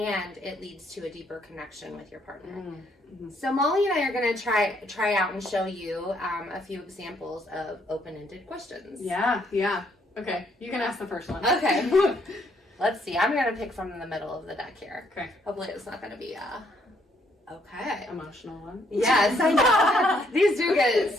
it leads to a deeper connection with your partner. Mm-hmm. So Molly and I are going to try out and show you a few examples of open-ended questions. Yeah. Okay, you can ask the first one. Okay. Let's see. I'm going to pick from the middle of the deck here. Okay. Hopefully it's not going to be okay. Emotional one. Yes, I know. These do get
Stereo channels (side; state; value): both; normal; correlation 0.70